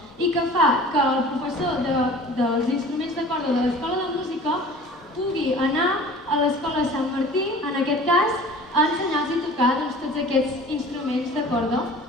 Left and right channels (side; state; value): both; normal; correlation 0.44